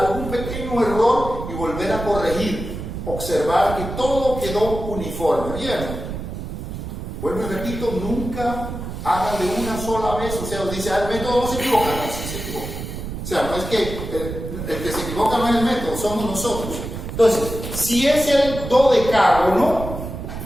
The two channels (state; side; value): noise; right; rumble, 7 dB below the sound